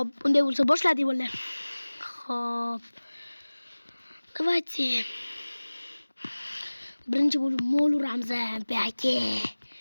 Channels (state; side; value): inverted; both; correlation -1.00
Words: unday bo'lsa boshladik bolalar. Xo'p. Давайте. Birinchi bo'lib mol uramiz. Baki.